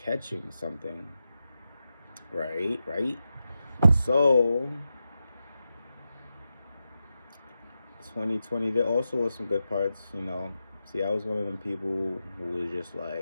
something. Right. So 2020, there also was some good parts, you know. See, I was one of them people who was just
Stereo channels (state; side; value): inverted; both; correlation -0.90